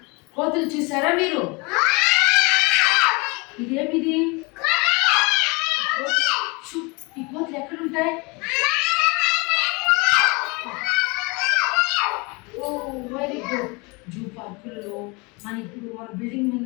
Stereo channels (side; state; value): right; quieter; 28.2 dB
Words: కోతులు చూసారా మీరు? ఇదేమిది? ఈ కోతులు ఎక్కడుంటాయి? Very good. జూ పార్కులలో మన బిల్డింగ్